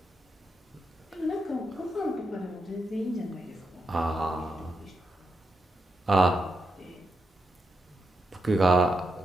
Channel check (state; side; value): normal; both; correlation 0.85